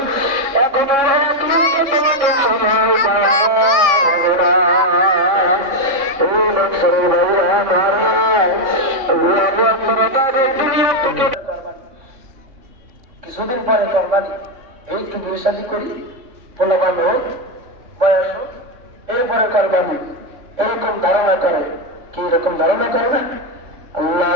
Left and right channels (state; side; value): late; left; 3.4 ms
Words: এখন আর এক লোক সময় কিছুদিন পরে করবানি এই একটু বিয়ে শাদী করি পোলাবান হোক বয়স হোক এরপরে করবানি এরকম ধারণা করে কি এরকম ধারণা করে না